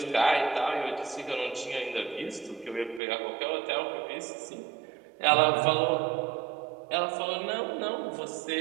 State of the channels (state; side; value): drops out; left; at 3.0 s